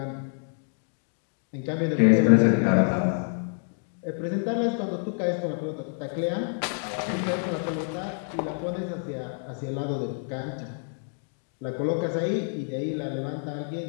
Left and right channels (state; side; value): silent; right; 60 dB below the other